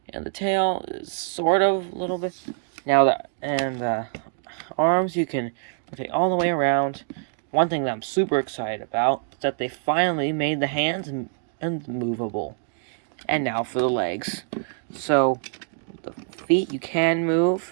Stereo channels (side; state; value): left; silent; digital silence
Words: And the tail is sort of a little bit. Now arms you can rotate all the way around. One thing that I'm super excited about is that they finally made the hands movable. And now for the legs. So the feet you can